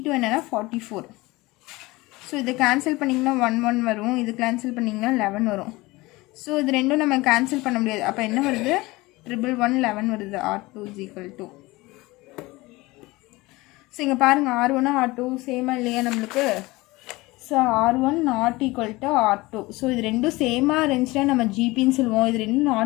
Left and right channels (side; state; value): right; quieter; 21.3 dB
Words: என்னென்னா 44. ஸோ இதை கேன்சல் பண்ணிங்கன்னா 1 வரும், இது கேன்சல் பண்ணிங்கன்னா 11 வரும். ஸோ இது ரெண்டும் நம்ம கேன்சல் பண்ண முடியாது. அப்போ என்ன வருது, 11 வருது. R2 is equal to. So இங்கே பாருங்கள், R1 R2 சேமாக இல்லையா நம்மளுக்கு. So R1 not equal to R2. So இது ரெண்டும் சேமாக இருந்துச்சுன்னா நம்ம ஜிபின்னு சொல்லுவோம். இது ரெண்டும்